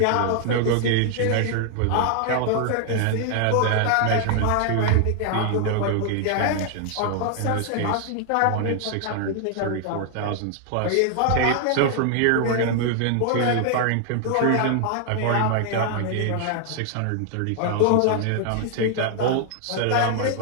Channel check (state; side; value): different; both; correlation 0.00